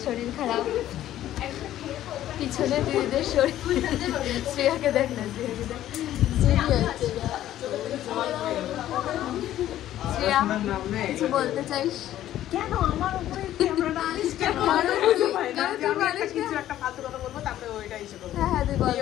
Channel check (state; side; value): quieter; right; 12.8 dB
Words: শরীর খারাপ, পিছনে দিদিদের শরীর। শ্রেয়াকে দেখ না, শ্রেয়াকে দেখ। শ্রেয়া কিছু বলতে চাইস? কেন আমার উপরে ক্যামেরাটা আনিস কেন? কিছু একটা ফালতু কথা বলবো, তারপরে ওইটা এসে বলবো। হ্যাঁ তুই বল।